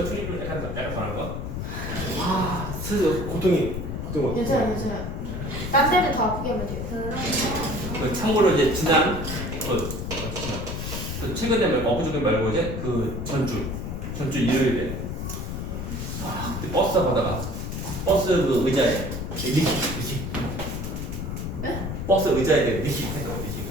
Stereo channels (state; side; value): noise; left; rumble, 5 dB below the sound